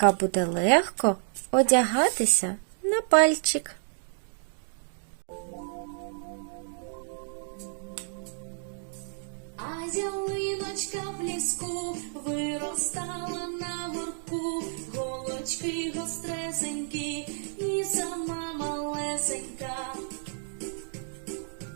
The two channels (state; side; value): silent; left; digital silence